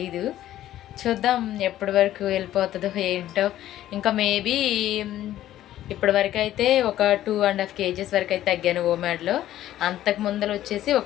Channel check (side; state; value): right; quieter; 13.1 dB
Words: చూద్దాం ఎప్పటి వరకు వెళ్ళిపోతుందో ఏంటో. ఇంకా మేబీ ఇప్పటి వరకు అయితే ఒక 2.5 kgs వరకు అయితే తగ్గాను ఓమాడ్లో. అంతకు ముందర వచ్చేసి